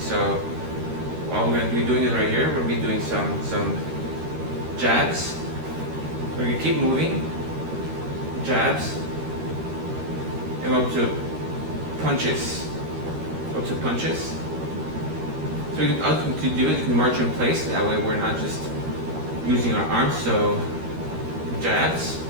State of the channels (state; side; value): late; left; 13 ms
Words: So all we're going to be doing is right here. We'll be doing some jabs. We're going to keep moving. Jabs. And up to punches. Up to punches. So we can, to do it, you can march in place. That way we're not just using our arms. So jabs.